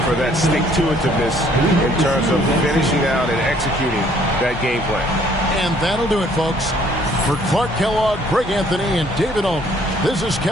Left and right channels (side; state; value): both; normal; correlation 0.61